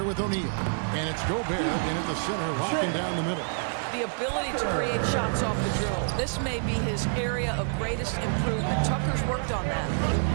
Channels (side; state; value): left; silent; digital silence